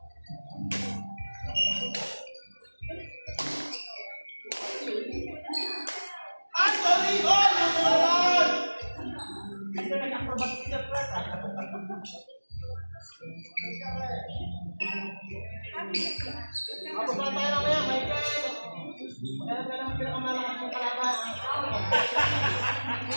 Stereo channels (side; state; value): both; inverted; correlation -1.00